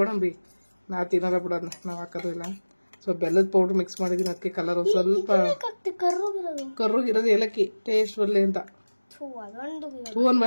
ನಾವು ತಿನ್ನೋದ ಬಿಡೋದನ್ನ, ನಾವು ಹಾಕೋದು ಇಲ್ಲ. ಸೊ ಬೆಲ್ಲದ ಪೌಡ್ರ್ ಮಿಕ್ಸ್ ಮಾಡಿದೀನಿ, ಅದಕ್ಕೆ ಕಲರ್ ಸ್ವಲ್ಪ ಕರ್ರುಗಿರೋದು ಏಲಕ್ಕಿ ಟೇಸ್ಟ್ ಬರಲಿ ಅಂತ. ಹೂ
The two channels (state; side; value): inverted; both; correlation -1.00